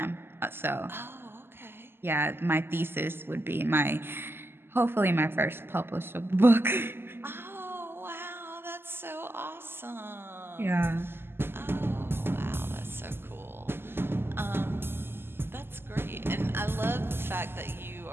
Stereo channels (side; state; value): left; late; 0.11 ms